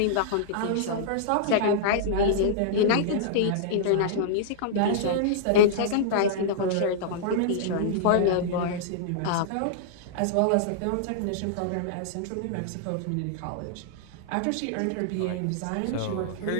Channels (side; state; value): both; different; correlation -0.02